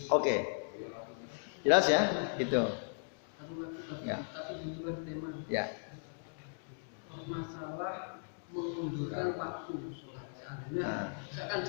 Oke. Jelas ya? Itu. Ya. Tapi di luar tema. Ya. Masalah mengundurkan waktu sholat. Artinya, misalkan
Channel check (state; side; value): silent; right; digital silence